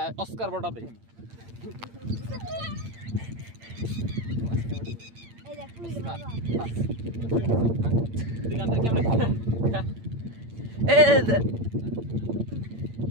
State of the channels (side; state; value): left; late; 8.8 ms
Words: অস্কার বটা দেখেন।